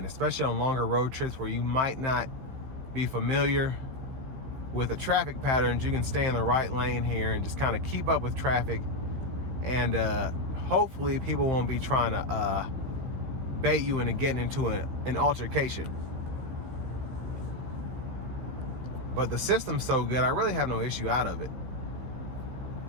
especially on longer road trips where you might not be familiar with the traffic patterns. You can stay in the right lane here and just kind of keep up with traffic, and hopefully people won't be trying to bait you into getting into an altercation. But the system's so good, I really have no issue out of it.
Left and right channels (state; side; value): late; left; 15 ms